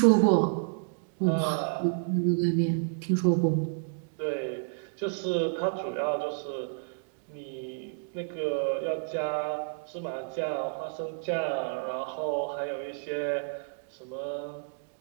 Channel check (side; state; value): left; silent; digital silence